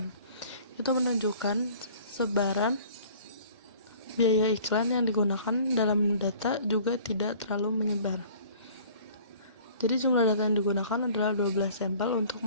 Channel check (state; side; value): inverted; both; correlation -0.50